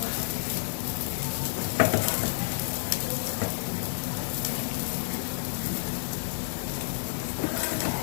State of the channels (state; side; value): silent; right; digital silence